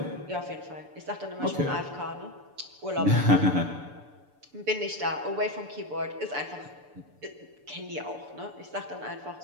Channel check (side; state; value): left; late; 6.9 ms